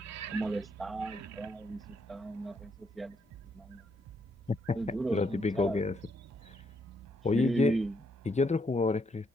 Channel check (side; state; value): both; normal; correlation 0.75